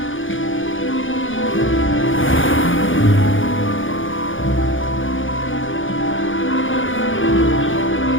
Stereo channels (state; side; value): late; right; 0.57 ms